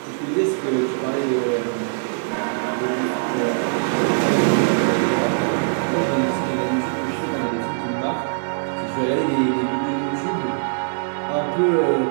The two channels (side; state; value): left; silent; digital silence